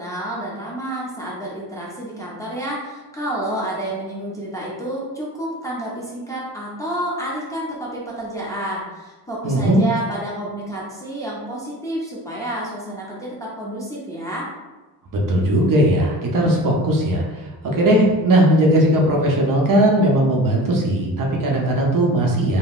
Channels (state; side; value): normal; both; correlation 0.39